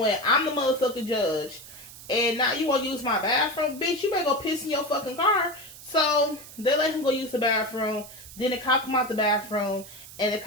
I'm the motherfucking judge, and now you wanna use my bathroom? Bitch, you better go piss in your fucking car. So they let him go use the bathroom. Then the cop come out the bathroom, and the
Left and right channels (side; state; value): right; noise; hiss, 16 dB below the sound